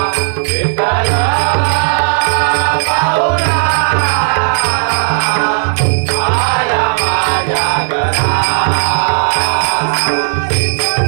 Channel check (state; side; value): silent; left; 66 dB below the other